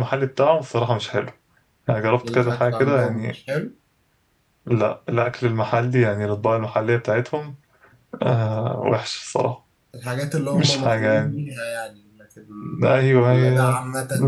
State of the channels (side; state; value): both; identical; correlation 1.00